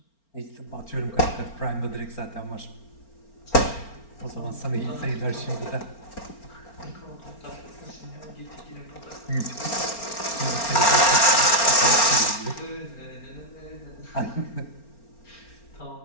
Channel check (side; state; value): right; late; 4.4 ms